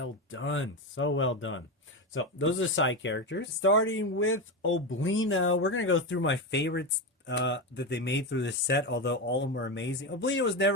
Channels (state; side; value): normal; both; correlation 0.15